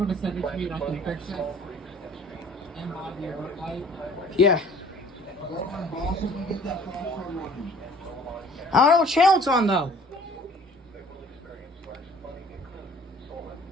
to send it to me and I can fix it. And buy the alert light. Yeah. I don't know what channel it's on though.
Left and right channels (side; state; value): both; normal; correlation 0.52